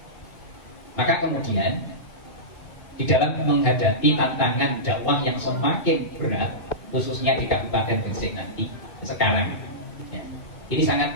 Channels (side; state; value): right; late; 2.2 ms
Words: Maka kemudian di dalam menghadapi tantangan dakwah yang semakin berat, khususnya di Kabupaten Gresik nanti sekarang, ya, ini